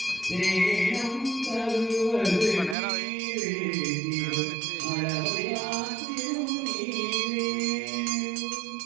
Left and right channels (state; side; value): drops out; left; at 2.8 s